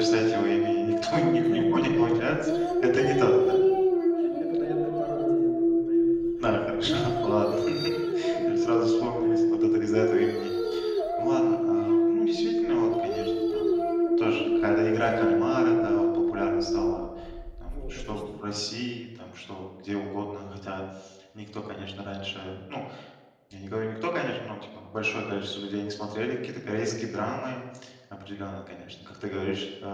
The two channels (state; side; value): identical; both; correlation 1.00